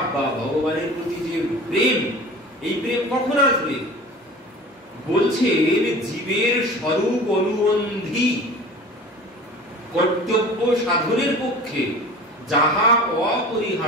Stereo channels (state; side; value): normal; both; correlation 0.39